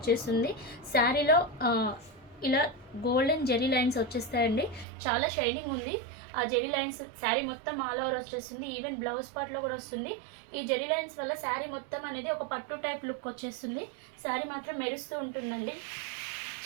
శారీలో ఇలా గోల్డెన్ జెరీ లైన్స్ వచ్చేస్తాయండి. చాలా షైనింగ్ ఉంది. ఆ జెరీ లైన్స్ శారీ మొత్తం ఆల్ ఓవర్ వచ్చేస్తుంది. ఈవెన్ బ్లౌజ్ పార్ట్లో కూడా వస్తుంది. ఈ జెరీ లైన్స్ వల్ల శారీ మొత్తం అనేది ఒక పట్టు టైప్ లుక్ వచ్చేస్తుంది. శారీ మాత్రం మెరుస్తూ ఉంటుందండి.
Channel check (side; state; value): left; drops out; at 4.9 s